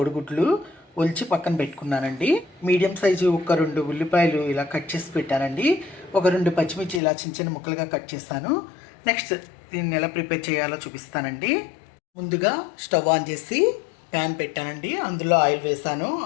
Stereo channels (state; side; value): drops out; right; at 7.0 s